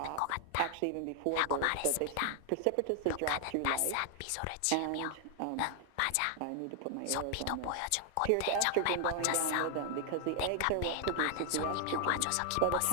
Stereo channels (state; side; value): different; both; correlation 0.00